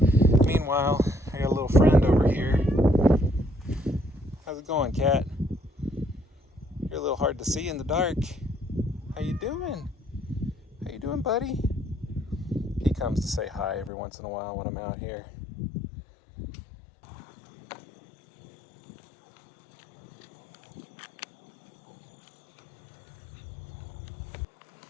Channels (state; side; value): drops out; right; at 13.9 s